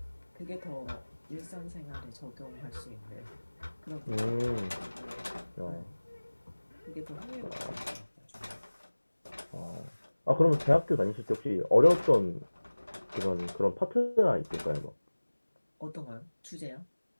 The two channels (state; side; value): inverted; both; correlation -1.00